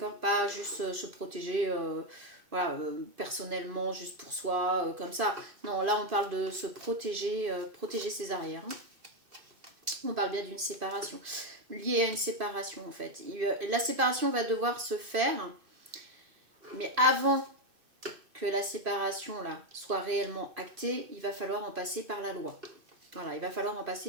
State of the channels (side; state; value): left; late; 2.6 ms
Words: Pas juste se protéger voilà, personnellement, juste pour soi, comme ça. Non, là on parle de se protéger, protéger ses arrières. Hein. On parle bien d'une séparation. lié à une séparation en fait. La séparation va devoir se faire, mais avant que la séparation là soit réellement actée, il va falloir en passer par la loi. Voilà, il va falloir en